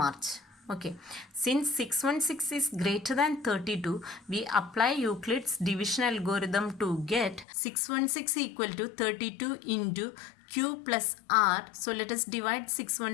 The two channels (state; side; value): drops out; right; at 7.5 s